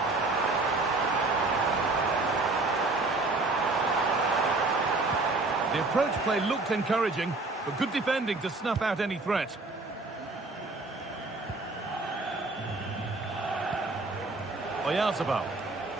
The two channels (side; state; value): left; quieter; 3.3 dB